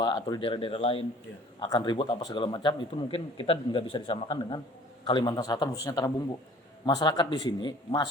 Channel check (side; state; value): both; normal; correlation 0.51